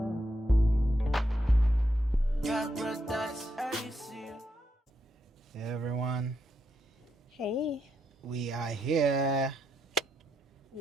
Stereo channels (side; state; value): both; normal; correlation 0.81